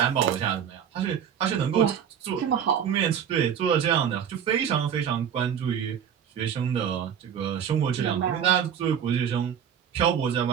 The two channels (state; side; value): quieter; left; 8.5 dB